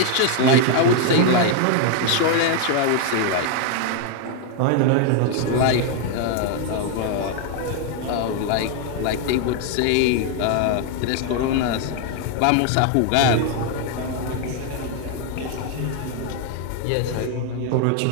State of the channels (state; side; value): different; both; correlation 0.00